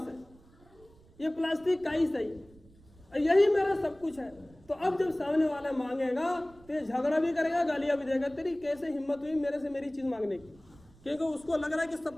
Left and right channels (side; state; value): right; noise; rumble, 26 dB below the sound